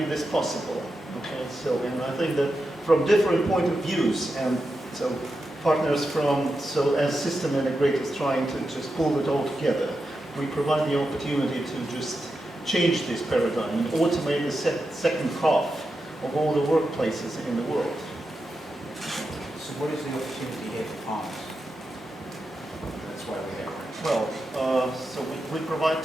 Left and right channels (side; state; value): both; normal; correlation 0.88